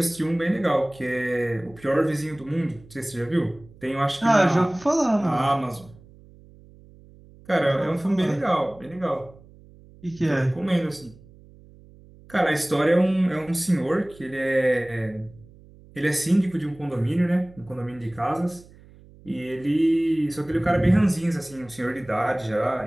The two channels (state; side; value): noise; right; hum, 24 dB below the sound